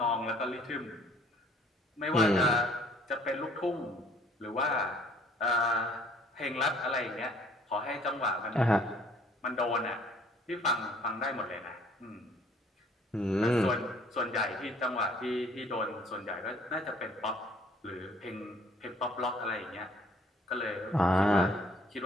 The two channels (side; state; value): both; normal; correlation 0.59